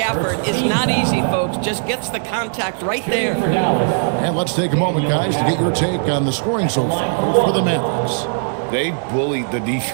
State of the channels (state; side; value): silent; left; 63 dB below the other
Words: is not easy, folks. Just gets the contact right there. And let's take a moment, guys, to get your take on the scoring so far for the Mavericks. They bullied the